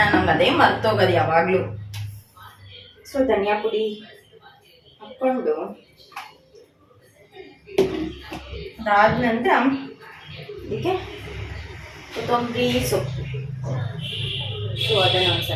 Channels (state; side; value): identical; both; correlation 1.00